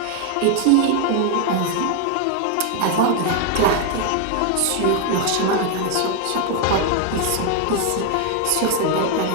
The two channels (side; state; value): both; different; correlation 0.00